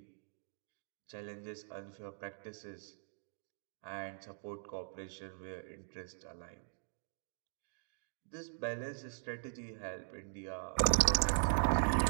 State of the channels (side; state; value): left; silent; digital silence